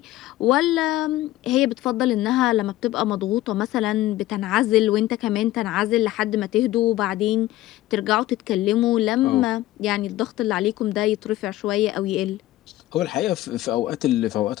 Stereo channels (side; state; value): right; quieter; 15.7 dB